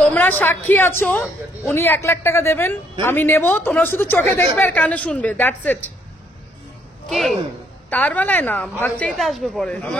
সাক্ষী আছো, উনি 1 লাখ টাকা দেবেন, আমি নেব, তোমরা শুধু চোখে দেখবে আর কানে শুনবে, দ্যাটস ইট। কি তার বেলায় না, ভাগ চাইতে আসবে পরে।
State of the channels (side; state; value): both; normal; correlation 0.68